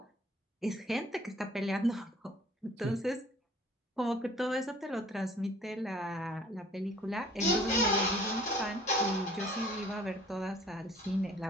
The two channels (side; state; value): both; normal; correlation 0.53